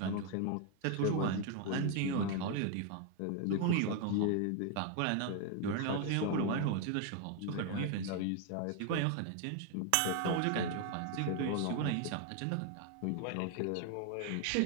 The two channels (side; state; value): both; different; correlation 0.01